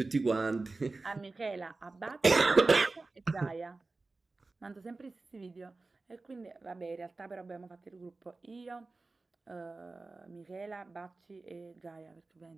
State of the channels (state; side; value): quieter; left; 3.5 dB